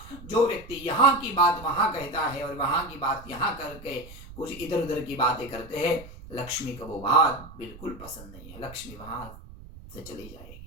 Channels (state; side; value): noise; right; rumble, 16 dB below the sound